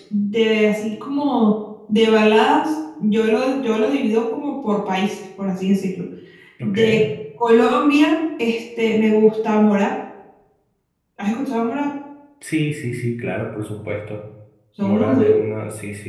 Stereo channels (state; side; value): identical; both; correlation 1.00